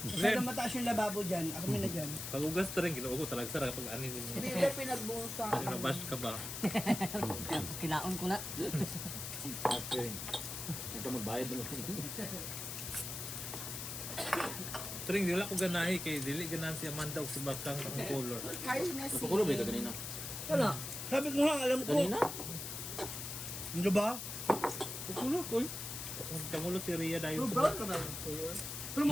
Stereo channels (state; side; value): noise; left; hiss, 6 dB below the sound